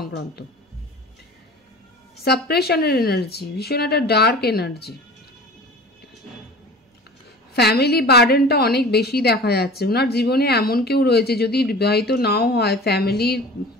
সাপ্রেশনের এনার্জি, ভীষণ একটা ডার্ক এনার্জি। ফ্যামিলি বার্ডেনটা অনেক বেশি দেখা যাচ্ছে। ওনার জীবনে এমন কেউ রয়েছে, যদি বিবাহিত নাও হয়, ফ্যামিলির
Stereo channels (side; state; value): both; normal; correlation 0.40